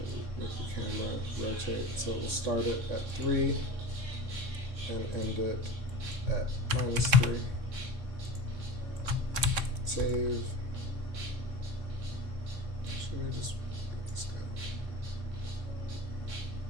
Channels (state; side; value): late; left; 3.6 ms